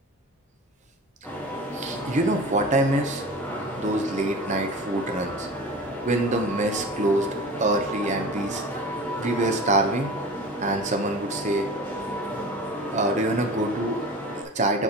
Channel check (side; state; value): both; normal; correlation 0.36